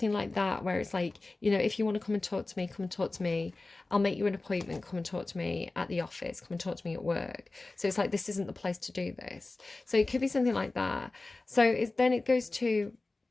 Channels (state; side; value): quieter; right; 3.2 dB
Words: like that, where it's like, you know, if you want to come and talk to me, come and talk to me. I'll make you an appointment, come and talk to me at the office, come and talk to me at work. So it's like, this isn't the place to do this. So it could be something like that. So then it goes to,